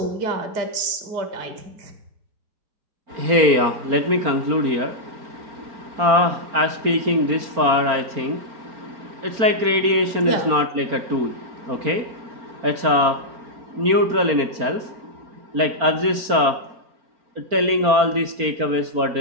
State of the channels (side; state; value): left; late; 4.4 ms